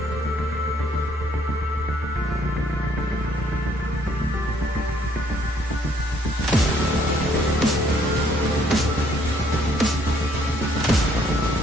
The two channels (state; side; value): normal; both; correlation 0.65